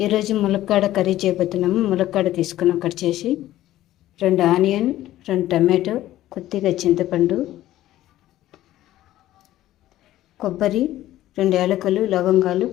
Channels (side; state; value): right; quieter; 14.3 dB